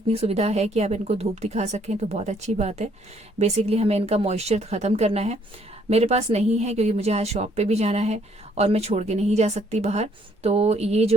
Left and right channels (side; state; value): both; normal; correlation 0.66